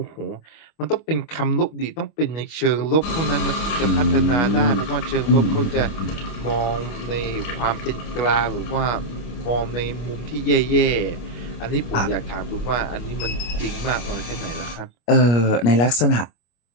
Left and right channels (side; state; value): right; late; 25 ms